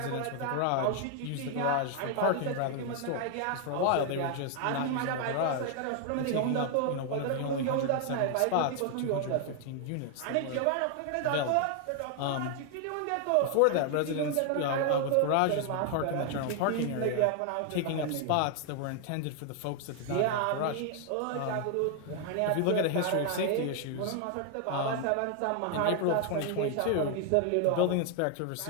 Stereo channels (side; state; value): both; different; correlation 0.00